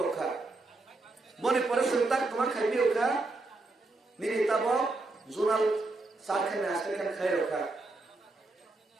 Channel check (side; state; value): left; quieter; 3.2 dB